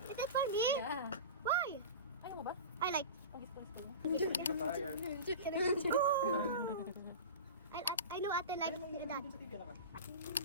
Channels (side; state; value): both; inverted; correlation -0.30